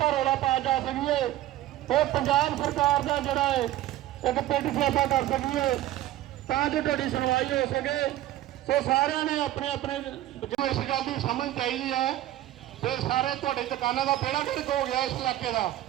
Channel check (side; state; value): left; quieter; 14.4 dB